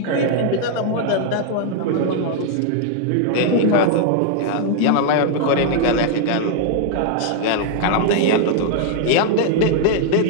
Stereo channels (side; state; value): both; different; correlation 0.00